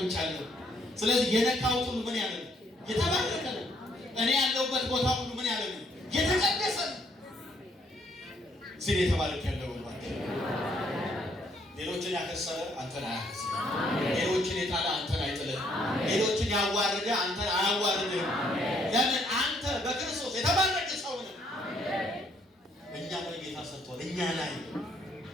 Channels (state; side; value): normal; both; correlation 0.68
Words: ስለዚህ የነካሁት ሁሉ ምን ያለ ነው? የተባረከ ነው። እኔ ያለሁበት ቦታ ሁሉ ምን ያለ ነው? የተቀደሰ ነው። ሲል የተባረከ ያለው ወልባክ ሌሎችን ያከሰረ አንተን አያከስርም። ሌሎችን የጣለ አንተን አይጥልም። ሌሎችን ያዋረደ አንተን አያዋርድም። ለምን? አንተ በክርስቶስ የተባረከ ሰው ነህ። እኛ ላይ ጌታ ሰርቷል። እኛ ላይ